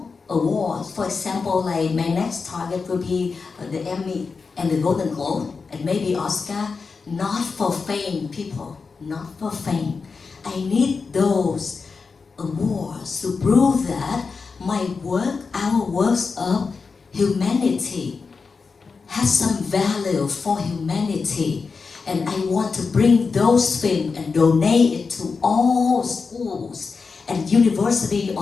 awards. For example, like my next target will be the Emmy and the Golden Globe, and maybe Oscar, not for fame, people, not for fame. I need those awards to prove that my work, our works of humanity, has some value for humanity. And I want to bring those films and donate it to all schools and universities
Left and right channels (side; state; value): right; quieter; 4.8 dB